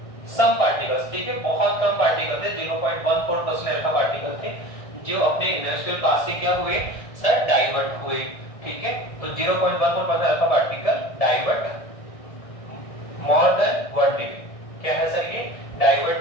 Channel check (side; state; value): right; late; 1.6 ms